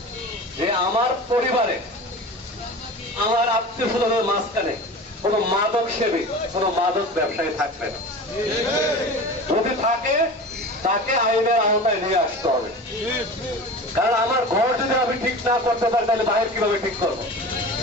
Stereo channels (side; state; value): both; normal; correlation 0.34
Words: যে আমার পরিবারে, আমার আত্মীয় স্বজনের মাঝখানে কোন মাদক সেবী, কোন মাদক ব্যবসায়ী থাকবে না। যদি থাকে তাকে আইনের আওতায় নিয়ে আসতে হবে। কারণ আমার ঘর যদি আমি ঠিক না করতে পারি তাহলে বাইরে কিভাবে ঠিক করবো?